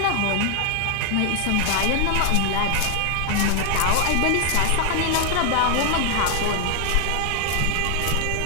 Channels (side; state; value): both; different; correlation 0.00